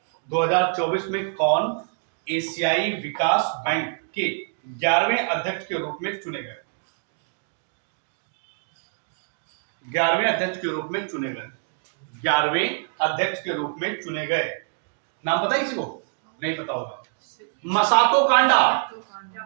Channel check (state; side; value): silent; left; digital silence